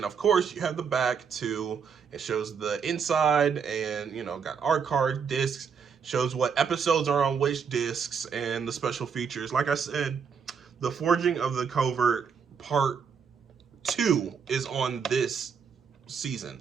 of course you have the back too. It shows the inside, and got art card, discs, shows what episodes are on which discs, and the special features. Like I said, the Forging of the Covert Part 2 is on this season,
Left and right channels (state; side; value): quieter; left; 6.4 dB